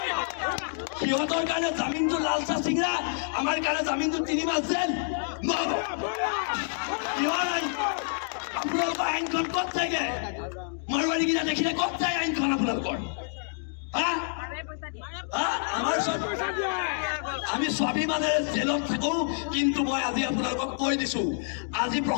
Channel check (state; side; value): silent; right; digital silence